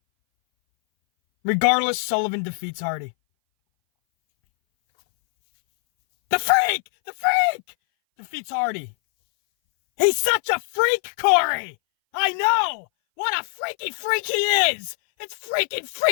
Regardless, Sullivan defeats Hardy. The freak! The freak! Defeats Hardy. He's such a freak, Corey! I know! What a freaky freak he is! It's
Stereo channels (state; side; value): silent; right; 61 dB below the other